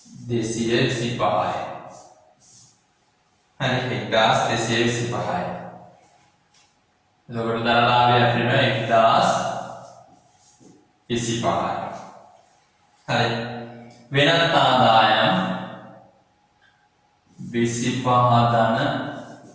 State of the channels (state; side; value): identical; both; correlation 1.00